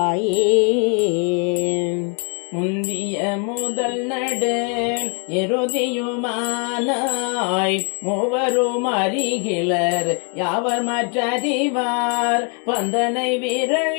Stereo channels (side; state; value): right; quieter; 37.4 dB